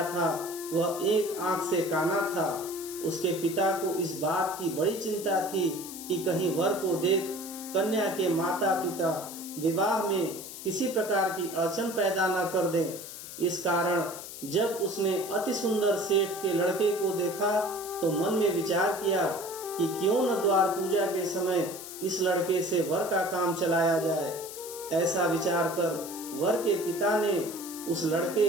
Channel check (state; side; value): noise; left; hiss, 11 dB below the sound